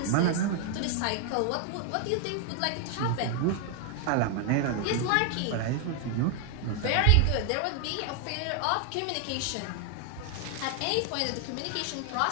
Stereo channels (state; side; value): different; both; correlation 0.00